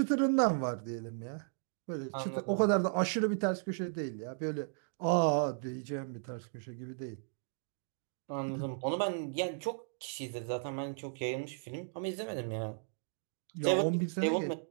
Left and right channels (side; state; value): left; silent; digital silence